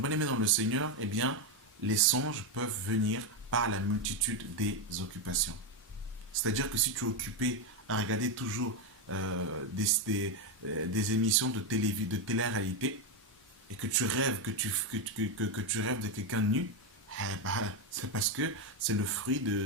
bien aimé dans le Seigneur, eh bien, les songes peuvent venir par la multitude des occupations. C'est-à-dire que si tu es occupé à regarder toujours des émissions de télé-réalité et que tu rêves, que tu rêves de quelqu'un nu, c'est parce que c'est le fruit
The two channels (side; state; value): both; normal; correlation 0.07